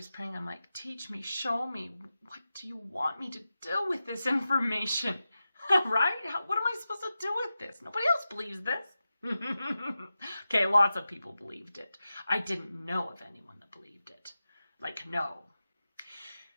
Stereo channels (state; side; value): inverted; both; correlation -0.93